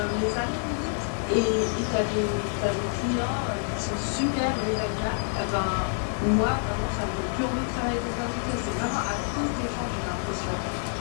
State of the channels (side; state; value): right; silent; 60 dB below the other